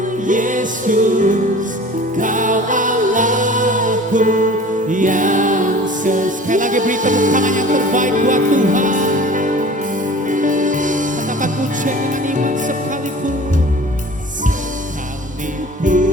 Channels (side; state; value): both; normal; correlation 0.43